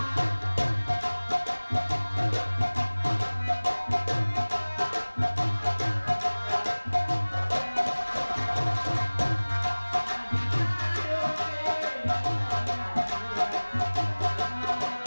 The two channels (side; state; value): both; inverted; correlation -1.00